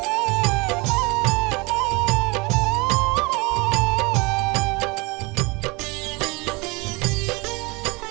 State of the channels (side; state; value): left; quieter; 26.3 dB